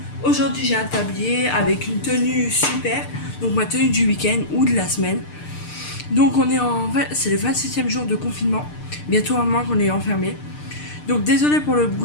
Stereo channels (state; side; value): late; right; 6.7 ms